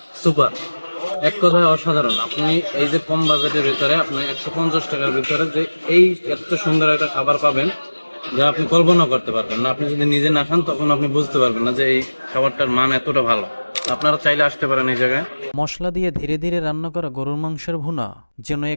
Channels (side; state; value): both; inverted; correlation -1.00